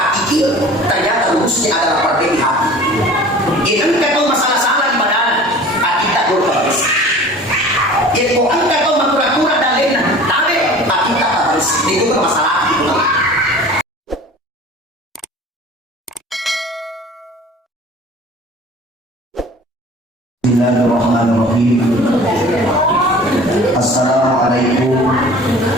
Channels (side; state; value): both; normal; correlation 0.43